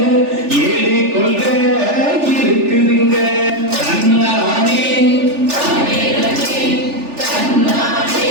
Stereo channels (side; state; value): left; late; 3.4 ms